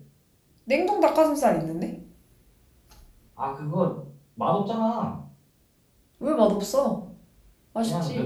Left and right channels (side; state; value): both; identical; correlation 1.00